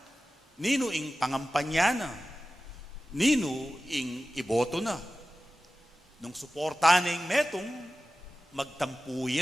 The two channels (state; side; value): normal; both; correlation 0.95